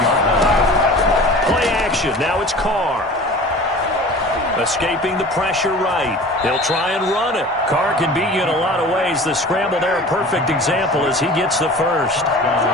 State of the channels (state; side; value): normal; both; correlation 0.40